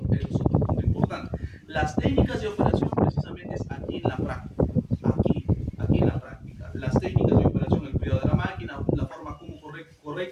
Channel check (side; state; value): both; identical; correlation 1.00